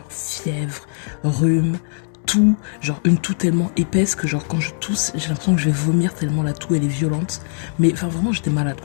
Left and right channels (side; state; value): right; silent; 65 dB below the other